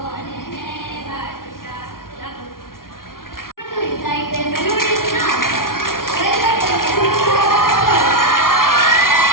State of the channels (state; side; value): late; right; 0.92 ms